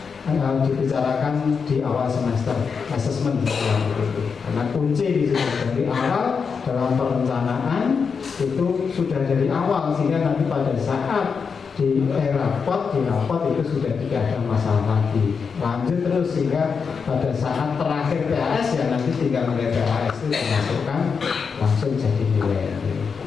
dibicarakan di awal semester asesmen karena kunci di situ dari awal dalam perencanaan itu sudah dari awal sehingga nanti pada saat di rapot itu sudah tidak ada masalah lagi, lanjut terus sehingga pada saat terakhir PAS ya nanti tinggal nilai PAS itu dimasukkan langsung jadi nilai.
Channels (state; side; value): quieter; right; 5.8 dB